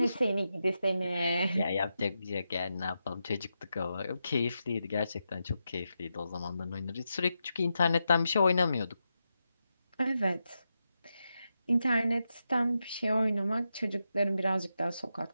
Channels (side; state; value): both; inverted; correlation -0.87